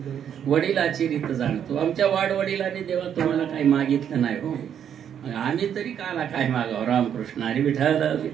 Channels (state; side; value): quieter; left; 8.9 dB